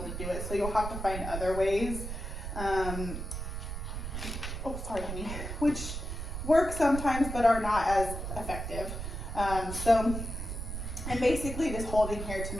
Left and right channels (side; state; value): right; noise; rumble, 5 dB below the sound